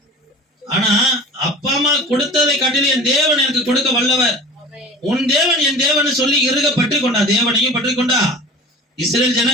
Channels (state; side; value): normal; both; correlation 0.39